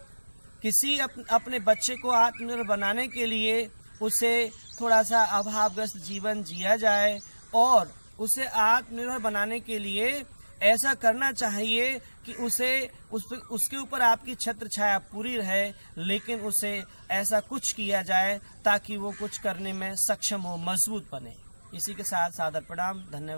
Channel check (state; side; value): inverted; both; correlation -1.00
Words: किसी अपने बच्चे को आत्मनिर्भर बनाने के लिए उसे थोड़ा सा अभावग्रस्त जीवन जिया जाए और उसे आत्मनिर्भर बनाने के लिए ऐसा करना चाहिए कि उसके ऊपर आपकी छत्र छाया पूरी रहे, लेकिन उसे ऐसा कुछ किया जाए ताकि वो कुछ करने में सक्षम हो, मजबूत बने। इसी के साथ सादर प्रणाम,